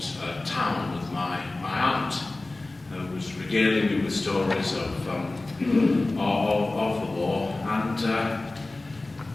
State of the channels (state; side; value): quieter; right; 3.0 dB